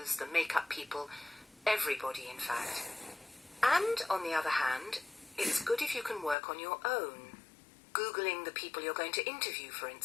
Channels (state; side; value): drops out; right; at 6.4 s